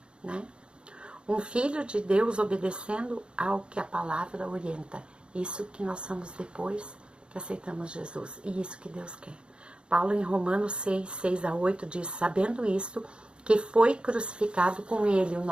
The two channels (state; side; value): late; left; 0.055 ms